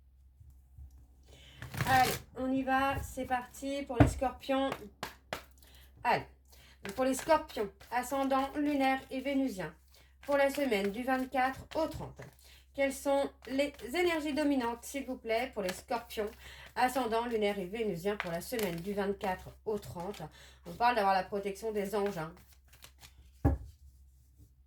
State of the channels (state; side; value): identical; both; correlation 1.00